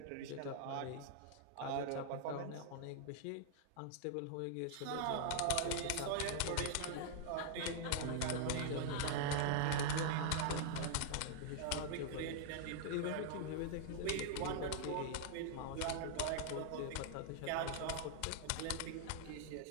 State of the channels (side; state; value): both; different; correlation -0.01